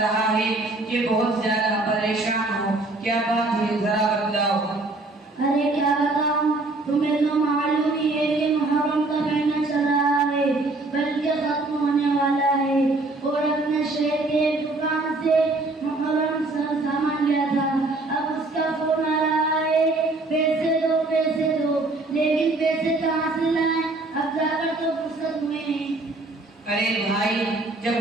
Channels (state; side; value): quieter; left; 3.1 dB